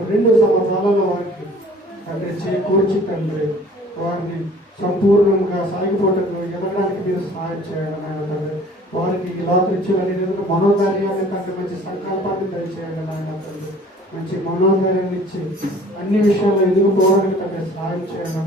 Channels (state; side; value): normal; both; correlation 0.50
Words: 2 సంవత్సరాలలో వారికి తండ్రి చేకూర్చి తండ్రి వారిని సంపూర్ణంగా సాగిపోవటకు ఎదగడానికి మీరు సహాయం చేయాలి నాయన తండ్రి. వారికి ఈ లోకరీత్యాన్ని మనోధైర్యాన్ని తండ్రి, మంచి సంకల్పాన్ని దయచేయాలి నాయన తండ్రి. మంచి మనోధైర్యాన్ని ఇచ్చి అన్ని విషయాల్లో ఎదుర్కోవడానికి తండ్రి సహాయం చేయాలి